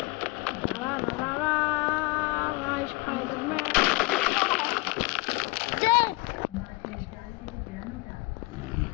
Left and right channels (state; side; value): quieter; right; 23.3 dB